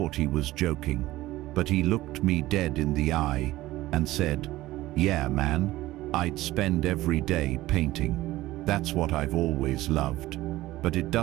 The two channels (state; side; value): quieter; left; 16.8 dB